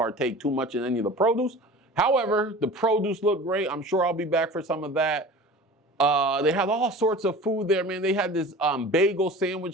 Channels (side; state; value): both; normal; correlation 0.39